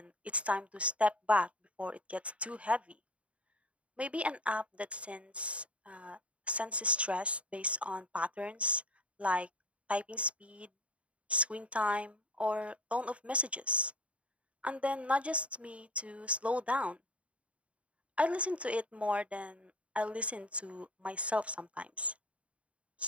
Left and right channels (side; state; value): left; late; 0.063 ms